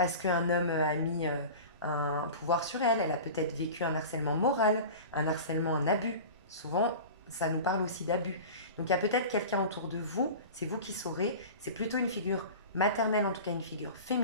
qu'un homme a mis un pouvoir sur elle. Elle a peut-être vécu un harcèlement moral, un harcèlement, un abus. Souvent, ça nous parle aussi d'abus. Donc il y a peut-être quelqu'un autour de vous, c'est vous qui saurez, c'est plutôt une figure maternelle, en tout cas une figure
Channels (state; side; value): inverted; both; correlation -0.34